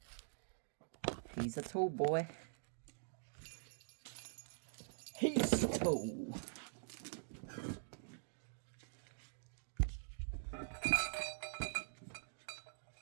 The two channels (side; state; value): left; silent; digital silence